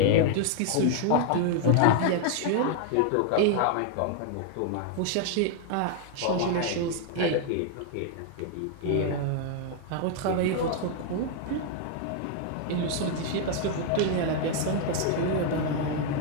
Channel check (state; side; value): different; both; correlation 0.00